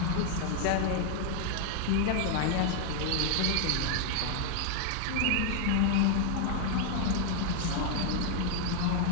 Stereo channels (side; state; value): both; different; correlation 0.01